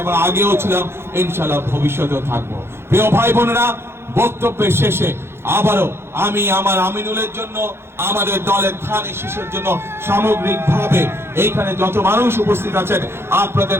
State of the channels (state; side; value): late; left; 0.12 ms